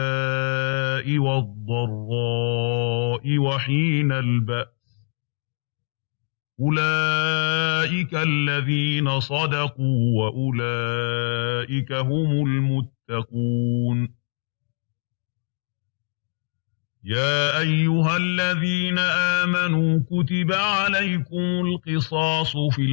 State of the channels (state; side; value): silent; right; digital silence